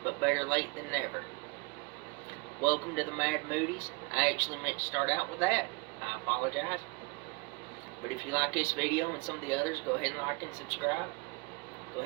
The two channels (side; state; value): left; quieter; 27.5 dB